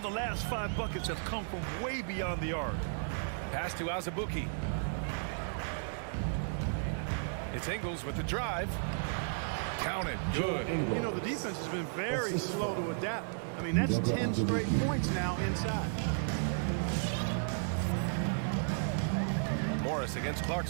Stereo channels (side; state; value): left; silent; digital silence